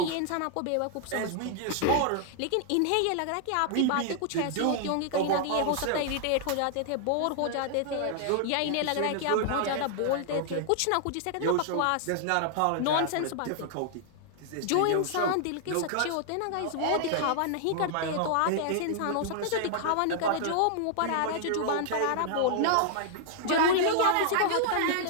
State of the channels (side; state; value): both; different; correlation -0.01